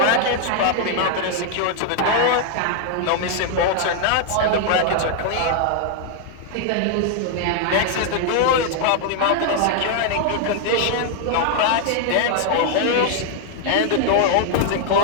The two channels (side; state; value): both; different; correlation 0.00